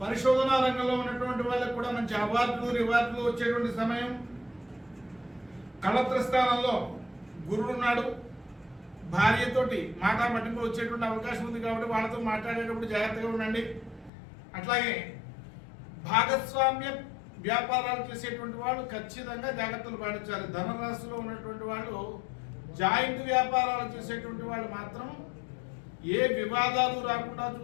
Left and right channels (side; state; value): right; drops out; at 14.1 s